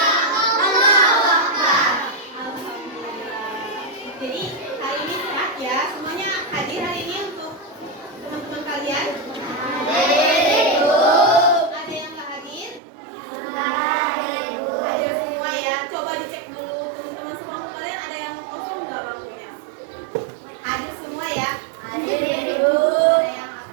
Allahu Akbar. Alhamdulillah. Jadi hari ini sehat ya. Semuanya hadir hari ini untuk teman-teman kalian. Ada yang nggak hadir? Hadir semua ya. Coba dicek dulu teman-teman sekelompok kalian ada yang kosong nggak bangkunya? Hadir semua ya. Hadir, Ada Bu. yang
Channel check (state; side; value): drops out; left; at 12.8 s